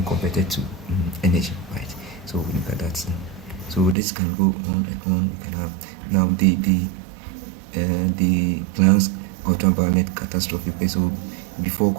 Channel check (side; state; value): left; drops out; at 4.0 s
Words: converted to energy, right? So we look at that. So this can go on and on. We can have now the Planck's ultraviolet catastrophe. Okay, so before